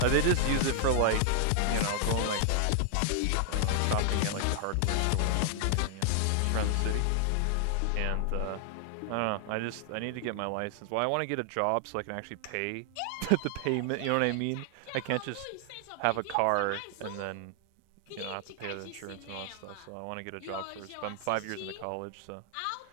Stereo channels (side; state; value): both; different; correlation 0.00